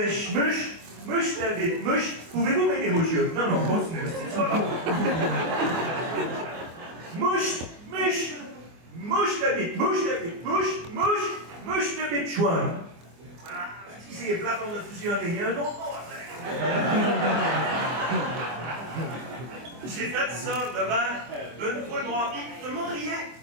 mouche ta bite, mouche. Pouvez-vous m'aider, monsieur? Non, continuez, c'est pas grave. Mouche ta bite, mouche ta bite, chouin. Ah, si c'est plate, on a fusionné, il y a un autre mot après. J'ai fait ça devant une foule noire, tout le monde riait.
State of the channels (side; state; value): left; late; 24 ms